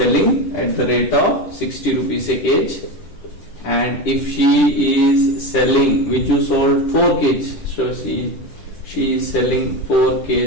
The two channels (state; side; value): late; right; 10 ms